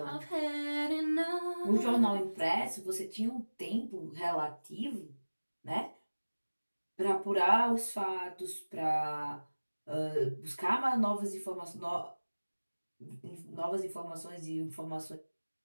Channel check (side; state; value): both; inverted; correlation -1.00